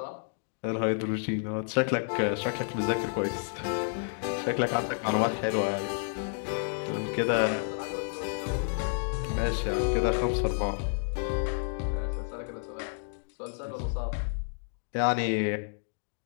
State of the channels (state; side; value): silent; right; digital silence